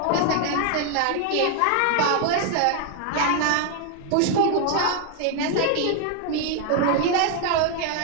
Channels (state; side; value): different; both; correlation 0.00